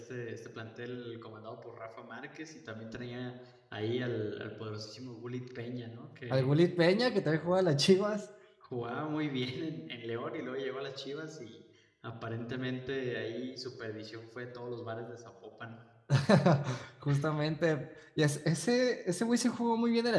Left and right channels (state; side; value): identical; both; correlation 1.00